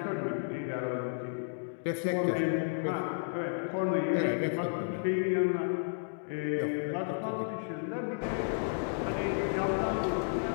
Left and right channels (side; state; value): right; silent; digital silence